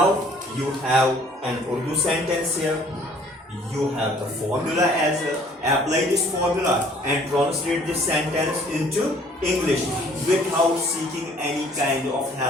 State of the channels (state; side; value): normal; both; correlation 0.56